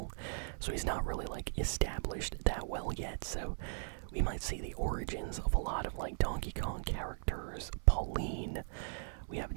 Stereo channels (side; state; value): left; silent; 53 dB below the other